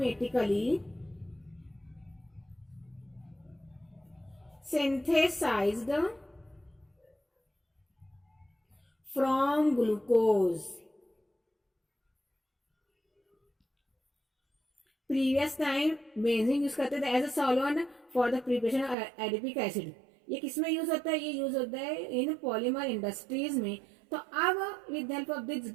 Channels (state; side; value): drops out; left; at 18.9 s